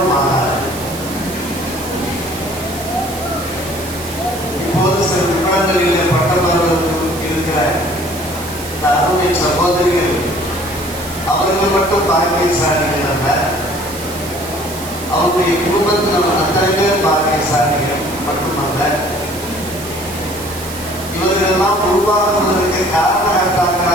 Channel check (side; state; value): right; noise; hiss, 12 dB below the sound